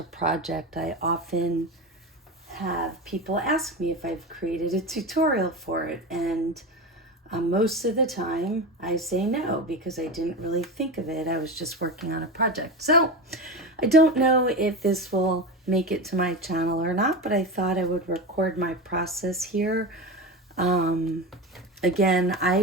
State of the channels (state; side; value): normal; both; correlation 0.23